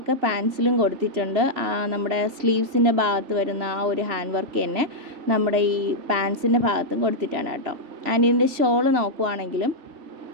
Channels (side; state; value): left; late; 3.0 ms